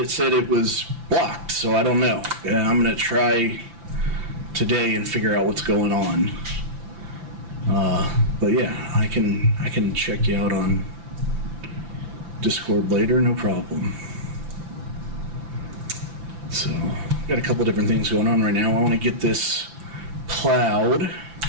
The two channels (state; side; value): late; left; 5.9 ms